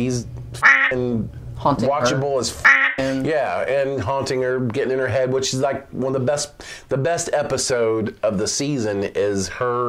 watchable as yeah, and haunting her, getting in her head, which is like one of the best episode of the season is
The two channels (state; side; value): identical; both; correlation 1.00